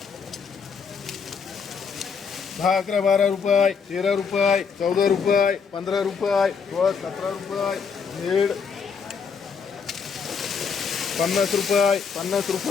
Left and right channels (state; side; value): quieter; right; 5.9 dB